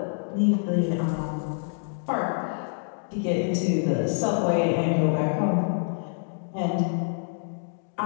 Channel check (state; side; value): silent; right; 60 dB below the other